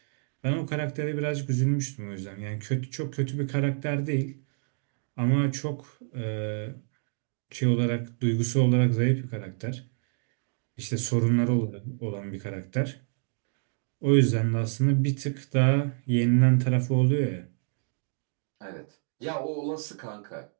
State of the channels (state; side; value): silent; left; 59 dB below the other